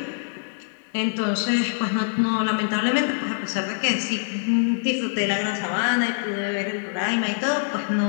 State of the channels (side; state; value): right; silent; digital silence